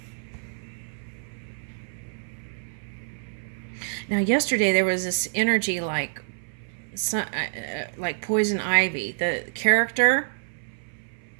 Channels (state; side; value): silent; left; 59 dB below the other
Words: Now, yesterday there was this energy like poison ivy. The character.